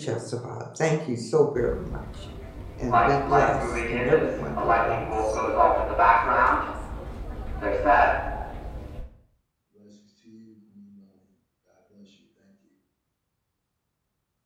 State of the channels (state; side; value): identical; both; correlation 1.00